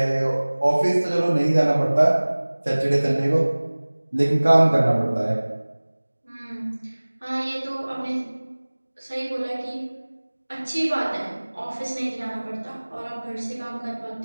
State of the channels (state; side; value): inverted; both; correlation -1.00